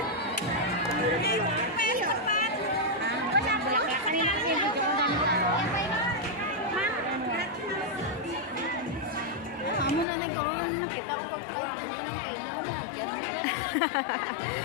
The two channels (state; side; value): drops out; right; at 10.1 s